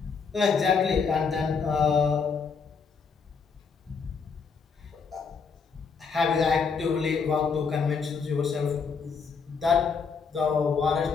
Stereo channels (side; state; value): right; quieter; 5.5 dB